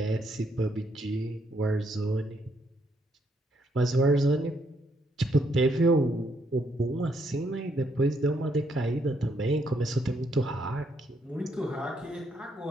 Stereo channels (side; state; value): both; normal; correlation 0.74